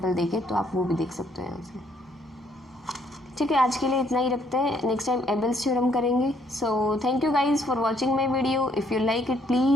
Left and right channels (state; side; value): normal; both; correlation 0.68